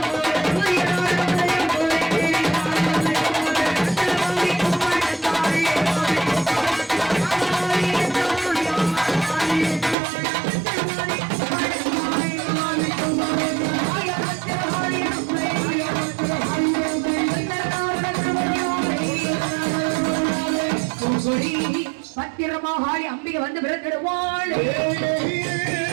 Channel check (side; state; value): left; drops out; at 10.0 s